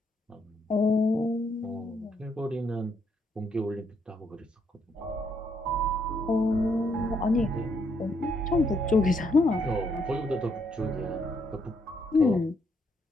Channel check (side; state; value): both; normal; correlation 0.74